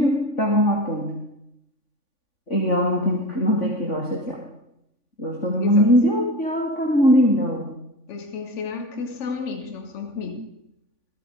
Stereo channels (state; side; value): late; right; 3.5 ms